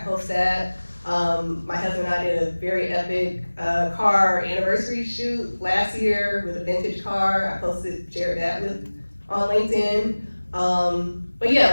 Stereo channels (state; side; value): inverted; both; correlation -1.00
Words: post that. My husband and I did a very epic car anniversary shoot last year with a vintage car. I shared that on LinkedIn. But